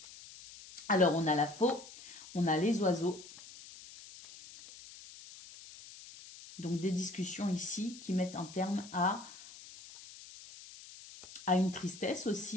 Alors, on a la faux, on a les oiseaux. Donc, des discussions ici qui mettent un terme à une tristesse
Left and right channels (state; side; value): noise; left; hiss, 17 dB below the sound